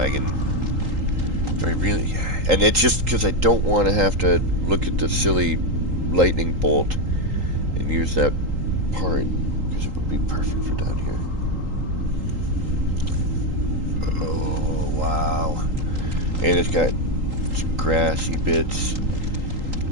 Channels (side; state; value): left; late; 3.8 ms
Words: Do I really? And it's just because I don't want to have to look at the silly lightning bolt and use that part, because it would be perfect for down here. Oh, wow. And it's got some grassy bits.